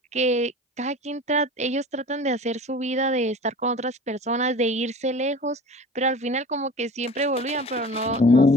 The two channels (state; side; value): normal; both; correlation 0.39